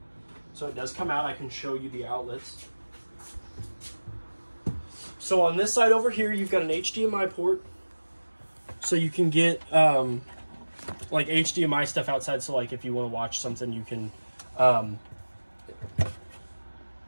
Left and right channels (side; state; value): both; inverted; correlation -1.00